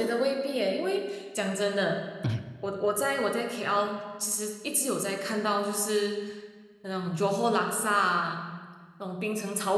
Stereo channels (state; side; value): identical; both; correlation 1.00